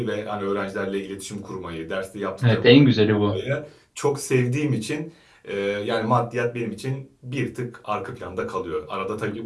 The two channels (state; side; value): identical; both; correlation 1.00